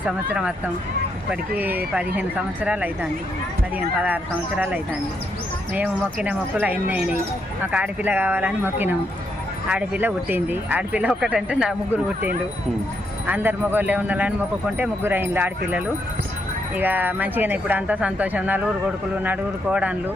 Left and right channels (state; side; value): normal; both; correlation 0.78